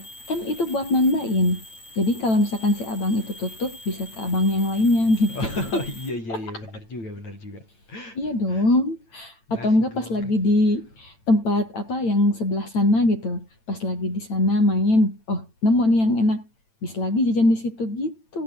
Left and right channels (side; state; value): right; late; 9.0 ms